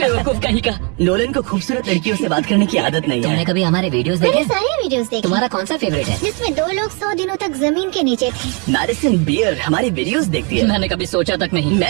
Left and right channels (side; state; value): left; quieter; 33.6 dB